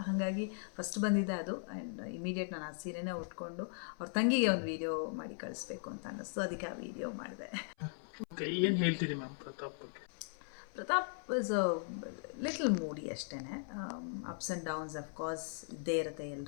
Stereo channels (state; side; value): silent; right; 52 dB below the other